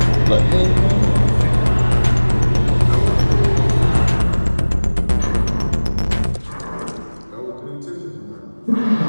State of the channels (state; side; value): inverted; both; correlation -1.00